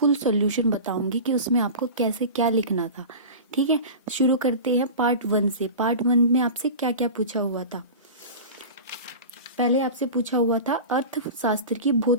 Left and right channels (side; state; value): both; inverted; correlation -0.32